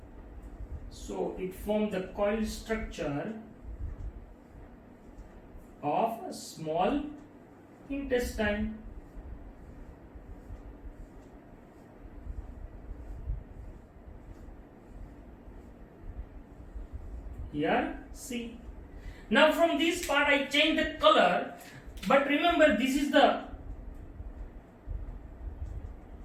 so it forms the coil structure of a small intestine. Here, see. Now from this part I change the color, but remember this is the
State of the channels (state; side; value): identical; both; correlation 1.00